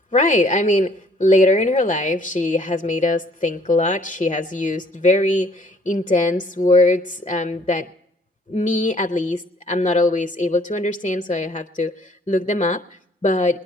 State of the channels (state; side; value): normal; both; correlation 0.60